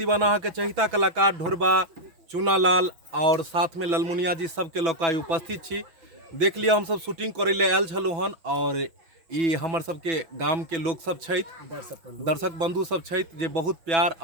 के चहिता कलाकार ढोरबा चूनालाल और साथ में ललमुनिया जी सबके लोकाई उपस्थित छी। देख लिया हम सब शूटिंग करे ले आयल छलु हन और ई हमर सबके गाम के लोग सब छथि, दर्शक बंधु सब छथि जे बहुत प्यार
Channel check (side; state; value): left; late; 6.1 ms